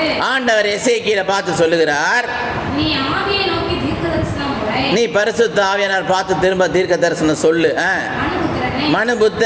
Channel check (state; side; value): identical; both; correlation 1.00